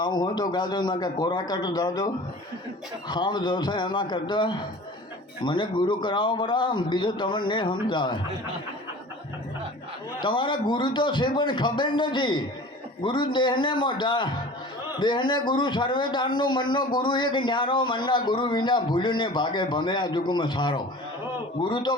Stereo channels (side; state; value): both; normal; correlation 0.41